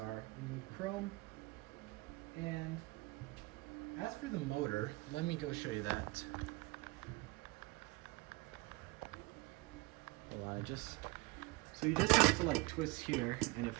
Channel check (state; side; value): quieter; left; 23.6 dB